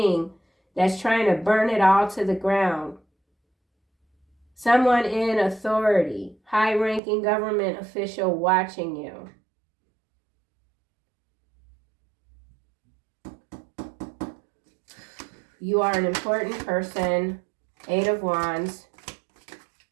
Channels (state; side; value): drops out; left; at 7.0 s